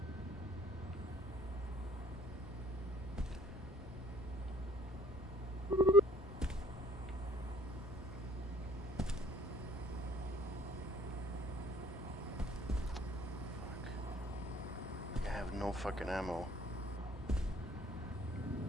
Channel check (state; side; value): normal; both; correlation 0.58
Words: Fuck. I have no fucking ammo.